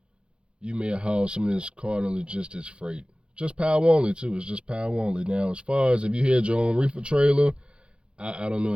you may have hauled some of this Cardinal Logistics freight. Just power only, too. It's just power only. Now, as far as if you had your own reefer trailer, I don't know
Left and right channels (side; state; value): left; late; 0.057 ms